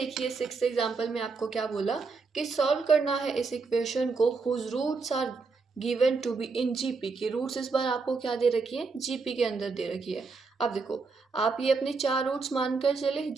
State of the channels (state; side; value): quieter; left; 4.4 dB